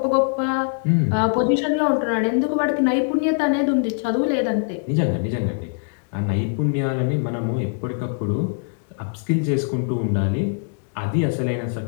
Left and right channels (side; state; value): right; silent; digital silence